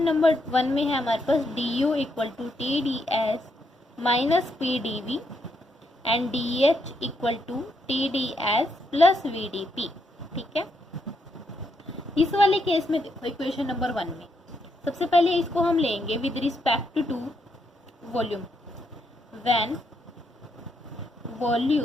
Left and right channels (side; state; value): both; normal; correlation 0.78